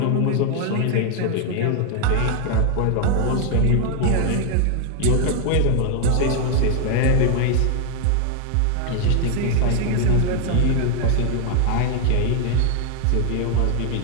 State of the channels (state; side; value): different; both; correlation 0.00